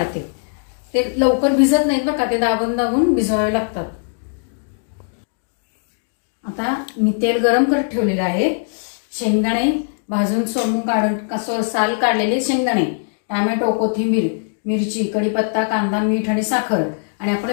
ते लवकर भिजत नाहीत बघा, ते दाबून दाबून भिजवावे लागतात। आता मी तेल गरम करत ठेवलेले आहे। शेंगदाणे भाजून सोलून काढून साल काढलेले शेंगदाणे, टोमॅटो, कोथिंबीर, मिरची, कढीपत्ता, कांदा, मीठ आणि साखर आणि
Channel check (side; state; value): right; silent; digital silence